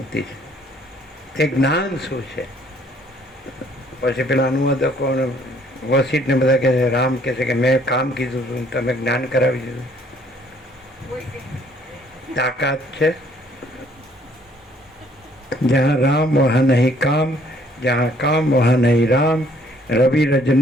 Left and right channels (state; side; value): normal; both; correlation 0.62